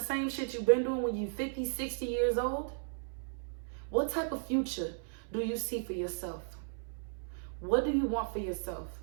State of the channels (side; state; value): left; silent; 54 dB below the other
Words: shit you've been doing when you're 50, 60 years old? What type of future do you see for yourself? What do you want for yourself?